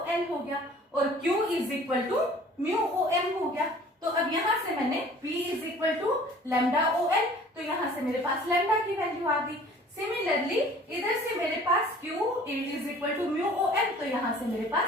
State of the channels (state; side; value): normal; both; correlation 0.49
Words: हो गया और Q is equal to mu OM हो गया। तो अब यहां से मैंने P is equal to lambda OL, तो यहां से मेरे पास लैम्डा की वैल्यू आ गई। सिमिलरली इधर से मेरे पास Q is equal to mu OM, तो यहां से मेरे